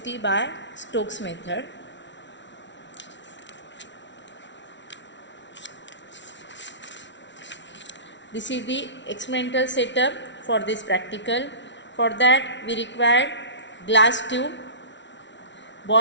by Stokes method. This is the experimental setup for this practical. For that we require glass tube,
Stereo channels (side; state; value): right; late; 0.53 ms